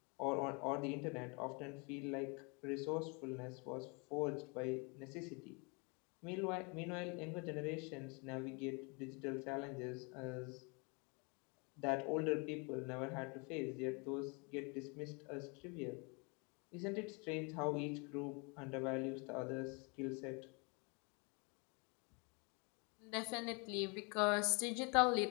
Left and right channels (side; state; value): right; quieter; 31.6 dB